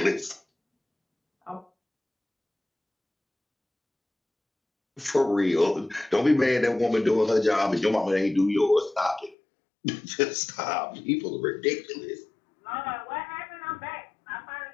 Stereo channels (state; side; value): drops out; right; at 9.3 s